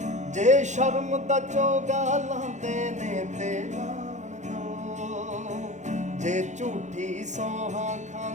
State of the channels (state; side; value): late; left; 0.34 ms